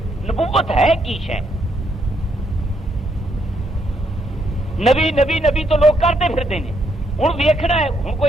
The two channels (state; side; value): normal; both; correlation 0.75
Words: نبوت ہے کی شے؟ نبی نبی نبی تو لوگ کرتے پھرتے ہیں، ہوں ویکھنا ہے، ہوں